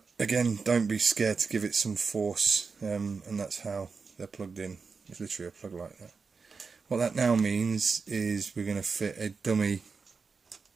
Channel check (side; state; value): left; quieter; 4.9 dB